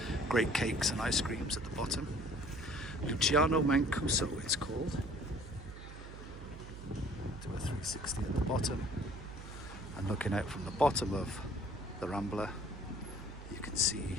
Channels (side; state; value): right; noise; hum, 13 dB below the sound